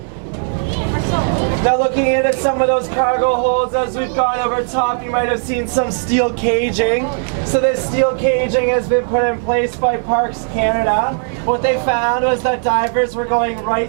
Now looking into some of those cargo holds as we've gone over top, you might have seen some steel caging. So this steel caging has been put in place by Parks Canada. What they found was that divers were going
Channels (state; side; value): silent; left; 68 dB below the other